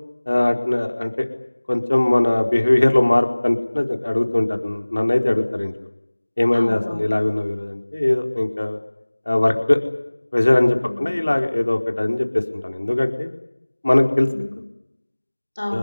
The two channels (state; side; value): inverted; both; correlation -1.00